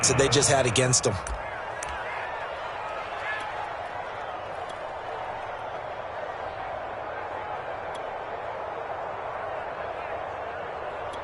that they just had against them.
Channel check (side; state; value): both; identical; correlation 1.00